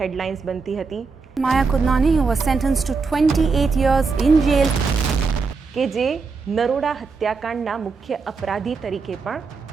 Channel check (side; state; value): left; quieter; 4.7 dB